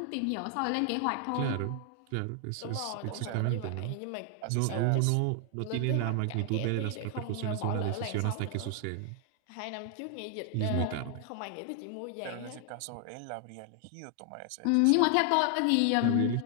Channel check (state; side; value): different; both; correlation 0.00